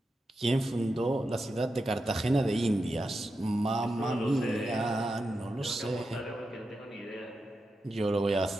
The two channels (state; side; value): normal; both; correlation 0.89